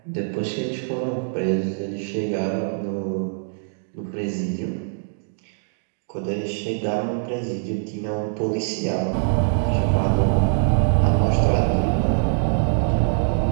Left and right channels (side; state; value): left; silent; digital silence